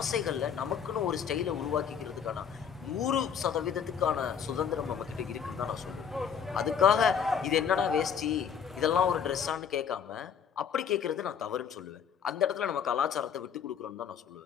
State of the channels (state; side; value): quieter; right; 7.6 dB